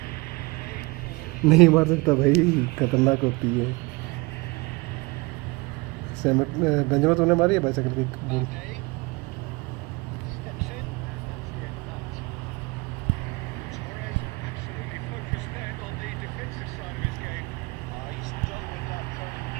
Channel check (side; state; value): left; quieter; 25.3 dB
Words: नहीं मार सकता भाई, खतरनाक होती है। बेंजामिन तूने मारी है bicycle kick? Mbappe steps in, and that's the end of that. Torres absolutely focused then on the defensive side of his game. he's dealt with that very